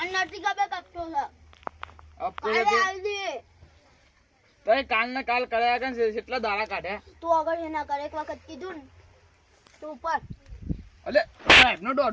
નથી ખબર કપતો છે. હપ્તો કાલે તો આલી દે. તો કાલ ને કાલ કર્યા કે કેટલા દાડા કાઢ્યા. તું આગળ એના કર એક વખત કીધું ને તું ઉપર. અલે સાહેબ નો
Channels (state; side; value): identical; both; correlation 1.00